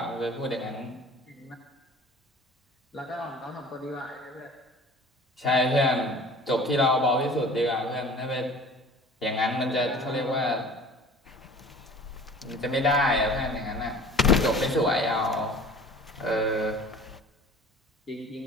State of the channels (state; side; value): normal; both; correlation 0.44